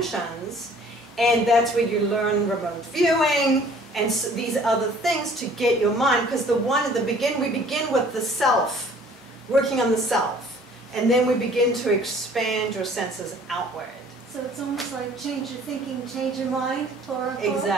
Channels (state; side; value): normal; both; correlation 0.53